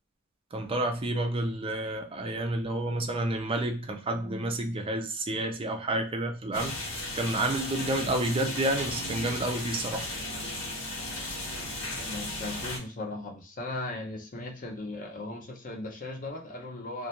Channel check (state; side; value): normal; both; correlation 0.33